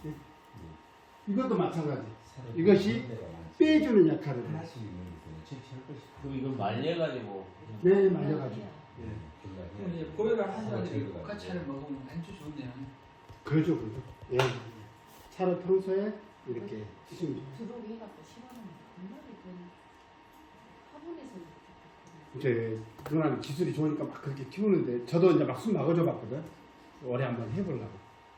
이것도 마찬가지. 새로 이것이 한 데가 많지. 빼주는 역할을 해요. 하나씩 있는 거예요. 그럼 이걸 말려가지고. 네, 말려가지고. 예. 그럼 이제 고혈압 환자들이 국화차를 먹으면 아주 좋네요. 그러죠, 그러죠. 예. 차를 평소에 이렇게 드시면 좋아요. 들어오게 해갖고 심하면 정말이 그 화분에서 이제 누나는 기술이 좋으니까 막 그렇게 키우는데 저도 이제 막 숨 막아줘 봤거든. 올해 한번 해보려고.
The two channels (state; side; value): identical; both; correlation 1.00